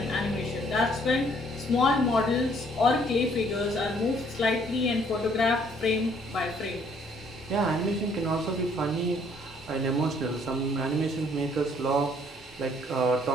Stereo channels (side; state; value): both; normal; correlation 0.63